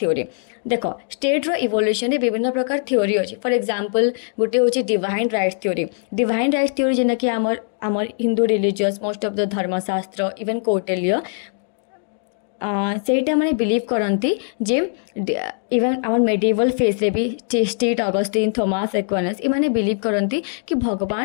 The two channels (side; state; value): right; silent; digital silence